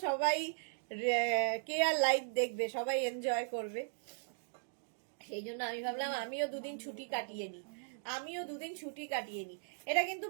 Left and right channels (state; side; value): silent; left; digital silence